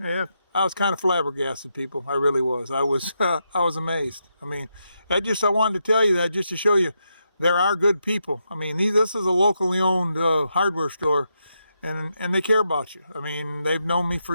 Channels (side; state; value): both; inverted; correlation -0.83